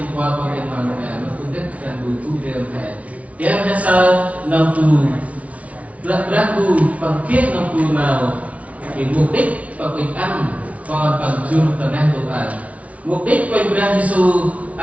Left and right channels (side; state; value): left; late; 0.066 ms